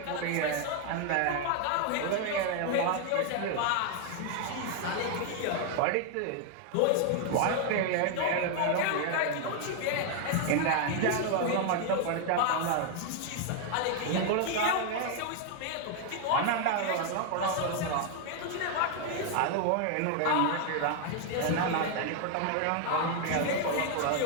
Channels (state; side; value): different; both; correlation 0.00